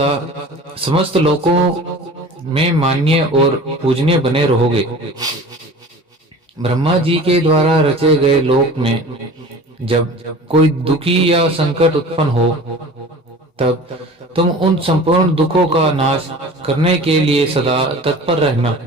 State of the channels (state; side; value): normal; both; correlation 0.40